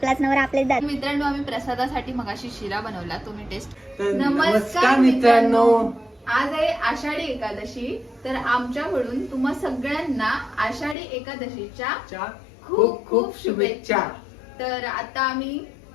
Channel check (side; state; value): right; drops out; at 11.0 s